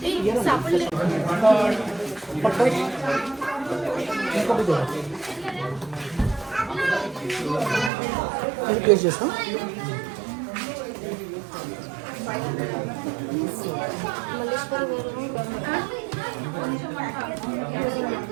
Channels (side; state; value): left; drops out; at 7.9 s